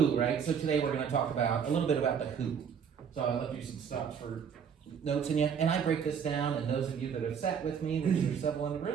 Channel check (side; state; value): left; quieter; 7.2 dB